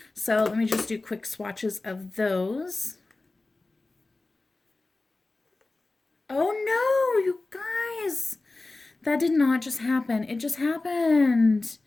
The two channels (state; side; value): quieter; right; 3.2 dB